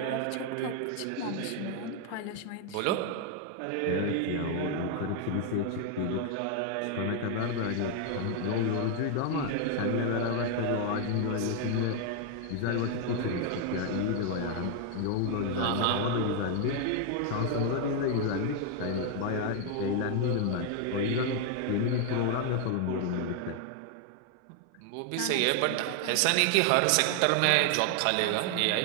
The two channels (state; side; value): different; both; correlation 0.00